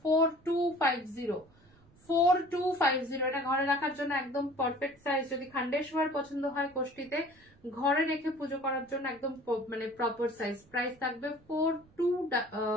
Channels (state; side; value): noise; right; rumble, 29 dB below the sound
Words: 4250। এটা ঘরে রাখার জন্য একদম পারফেক্ট সাইজ। যদি খন্ডেশ্বর পছন্দ হয় কোষ্ঠীতে ঘরে রেখে পুজো করার জন্য একদম মানে প্রপার সাইজ। প্রাইস থাকবে